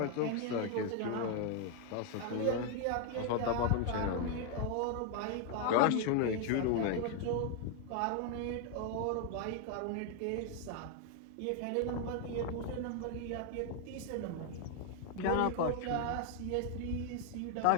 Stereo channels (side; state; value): both; different; correlation 0.00